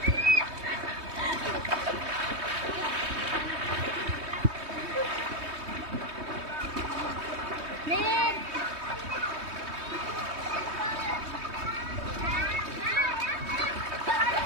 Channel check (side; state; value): left; late; 3.2 ms